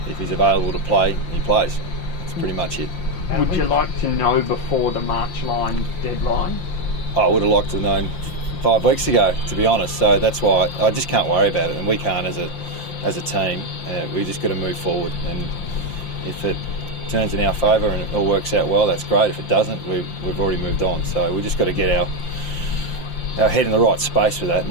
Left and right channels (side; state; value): right; late; 5.8 ms